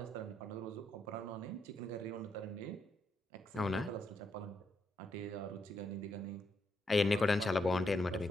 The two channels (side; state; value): both; normal; correlation 0.79